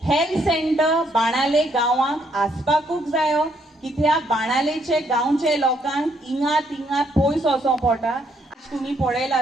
Health centre बाणाले गांवांक आसपाकूच जायो, कित्याक बाणालेचे गांवचे लोकांक हिंगा तिंगा पयस वचों पडटा. तुमी पळयला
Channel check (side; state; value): both; normal; correlation 0.71